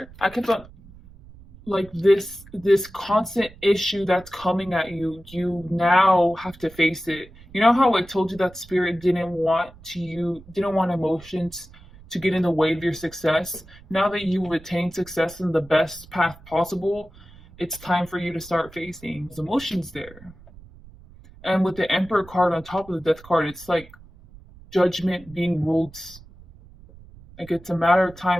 I kept on like this constant issue that's coming at you. You now have to face it. You know how I told you that spirit didn't want emotions to get in the way of your success. Now that you retain success in the best path possible, it's time for you to start facing those emotions there. And with the Emperor card on top of the Death card, it's like judgment being ruled. Like it's a matter of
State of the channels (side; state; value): right; noise; rumble, 22 dB below the sound